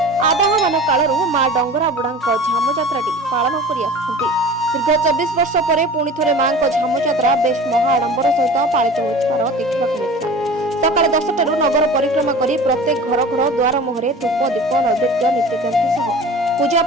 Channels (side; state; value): both; normal; correlation 0.38